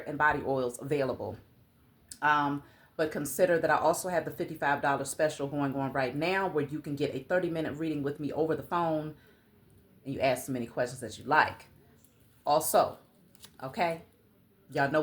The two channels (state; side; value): identical; both; correlation 1.00